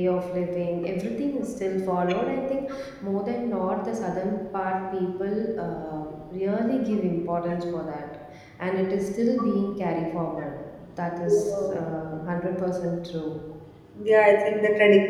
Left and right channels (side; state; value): both; identical; correlation 1.00